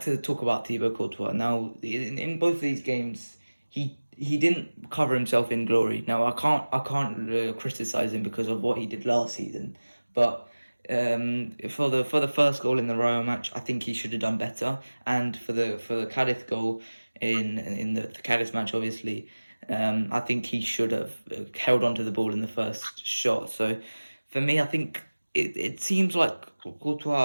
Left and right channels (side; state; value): both; inverted; correlation -1.00